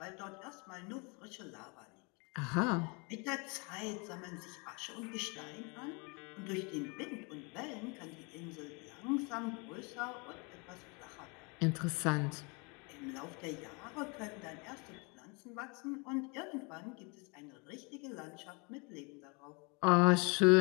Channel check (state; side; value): quieter; right; 31.3 dB